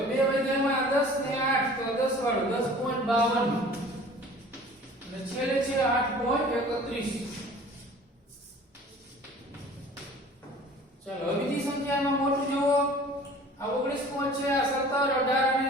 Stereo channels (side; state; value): both; normal; correlation 0.47